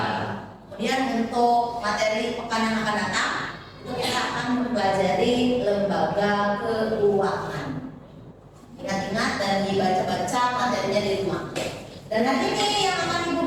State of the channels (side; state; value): both; identical; correlation 1.00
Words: Kemudian untuk materi pekan yang akan datang itu kita akan mempelajari lembaga keuangan. Ingat-ingat dan dibaca-baca materinya di rumah. Dan nanti ini yang akan Ibu